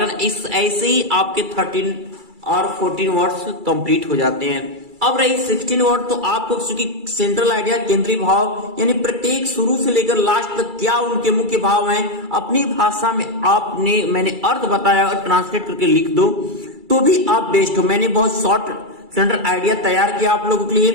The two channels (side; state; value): left; late; 2.3 ms